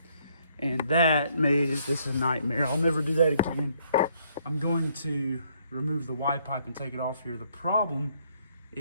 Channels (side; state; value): both; inverted; correlation -0.68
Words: and that made this a nightmare. I'll never do that again. I'm going to remove the Y pipe and take it off here. The problem